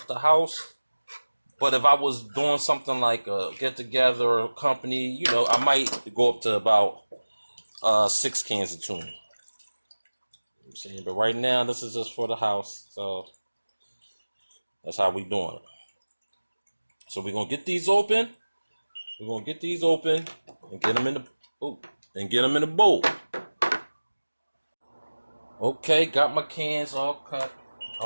house. But if I was doing something like a get together or company, you know, I might go up to about 6 cans of tuna. I'm saying, but right now this is just for the house, so that's how we doing it. So we're gonna get these open. We're gonna get these open and get them in the bowl. Okay, got my cans all cut,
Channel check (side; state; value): both; inverted; correlation -1.00